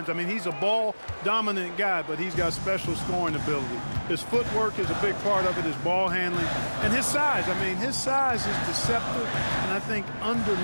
I mean, he's a ball-dominant guy, but he's got special scoring ability. His footwork is a big part of it, his ball handling, and his size. I mean, his size is deceptive, and I think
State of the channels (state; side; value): inverted; both; correlation -1.00